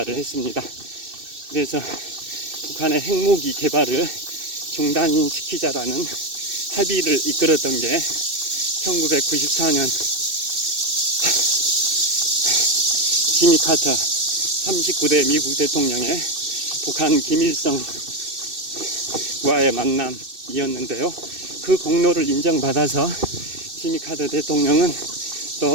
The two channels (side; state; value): left; late; 2.6 ms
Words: 했습니다. 그래서 북한의 핵무기 개발을 중단시키자라는 합의를 이끌었던 게 1994년 지미 카터 39대 미국 대통령의 북한 김일성과의 만남이었는데요. 그 공로를 인정받아서 지미 카터 대통령은